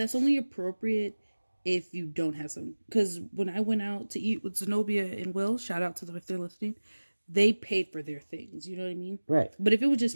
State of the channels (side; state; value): both; inverted; correlation -1.00